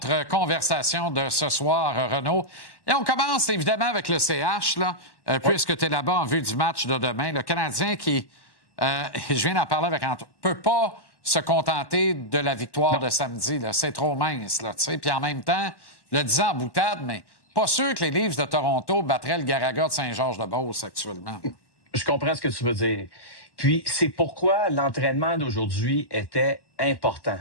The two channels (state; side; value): late; right; 1.1 ms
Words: conversation de ce soir, Renaud. Et on commence évidemment avec le CH, là, puisque tu es là-bas en vue du match de demain. Le Canadien qui, je viens d'en parler avec Antoine, peut pas se contenter de la victoire de samedi. Là. C'est trop mince, là, tu sais. Puis en même temps, le disant en boutade, mais pas sûr que les Leafs de Toronto battraient le Garaga de Saint-Georges-de-Beauce actuellement. Je comprends ce que tu veux dire. Puis, c'est pourquoi l'entraînement d'aujourd'hui était important.